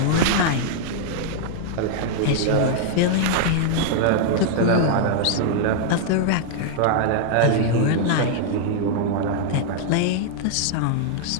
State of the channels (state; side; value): different; both; correlation -0.01